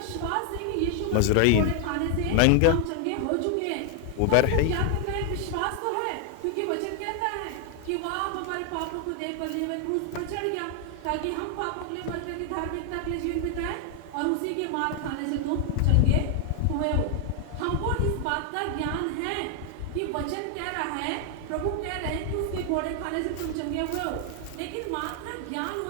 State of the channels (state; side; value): different; both; correlation 0.00